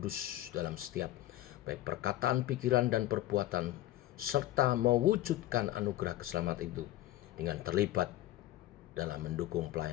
dalam setiap baik perkataan, pikiran, dan perbuatan, serta mewujudkan anugerah keselamatan itu dengan terlibat dalam mendukung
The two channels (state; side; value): quieter; right; 15.1 dB